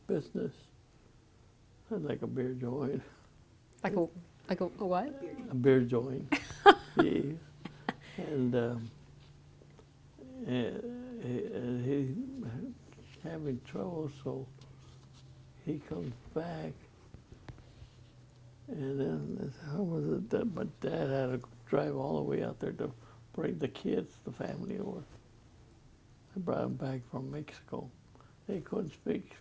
business, like a beer joint. Like a what? A beer joint. Yeah. And he having trouble, so he comes back. And then how was it that my dad had to drive all the way out there to bring the kids, the family over. I brought them back from Mexico. They couldn't speak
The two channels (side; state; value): both; identical; correlation 1.00